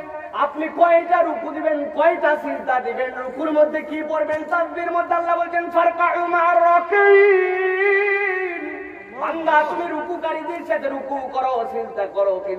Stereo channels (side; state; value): both; identical; correlation 1.00